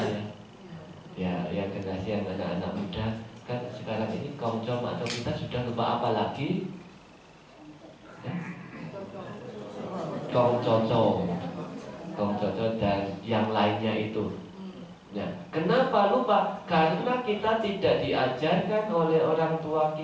ya. Ya, yang generasi yang anak-anak muda kan sekarang ini Kongco, Makco kita sudah lupa, apa lagi? Ya? Kongcoco, Kongcoco dan yang lainnya itu. Nah, kenapa lupa? Karena kita tidak diajarkan oleh orang tua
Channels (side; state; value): both; identical; correlation 1.00